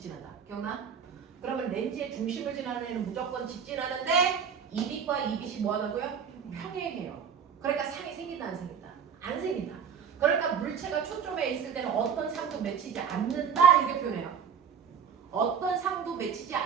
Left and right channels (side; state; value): left; quieter; 7.1 dB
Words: 기억나? 그러면 렌즈의 중심을 지나는 애는 무조건 직진하는데 이 빛과 이 빛이 뭐 하다고요? 평행해요. 그러니까 상이 생긴다 안 생긴다? 안 생긴다. 그러니까 물체가 초점에 있을 때는 어떤 상도 맺히지 않는다 이렇게 표현해요. 어떤 상도 맺히지